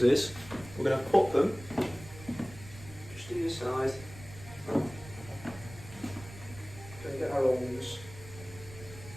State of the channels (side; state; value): right; noise; rumble, 16 dB below the sound